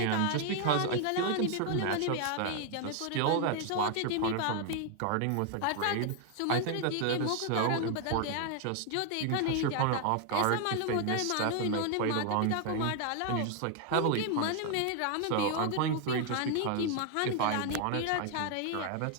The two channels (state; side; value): different; both; correlation 0.00